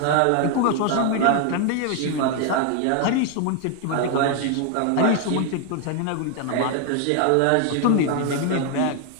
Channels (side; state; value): both; different; correlation 0.00